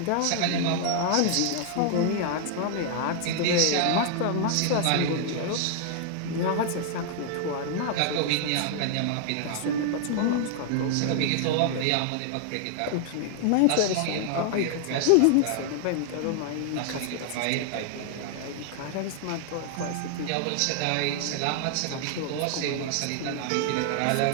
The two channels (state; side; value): different; both; correlation 0.00